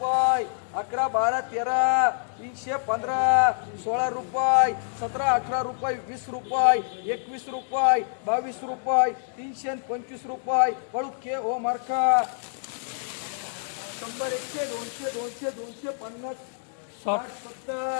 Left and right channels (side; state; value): right; silent; digital silence